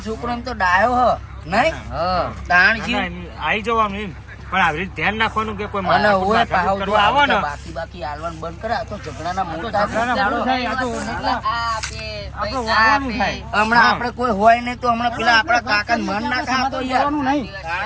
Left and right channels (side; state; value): both; identical; correlation 1.00